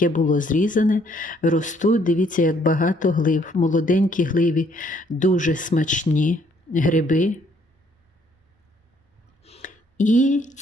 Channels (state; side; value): normal; both; correlation 0.66